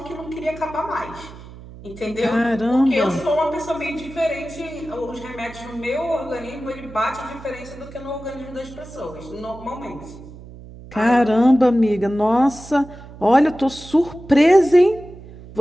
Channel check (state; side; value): noise; right; hum, 17 dB below the sound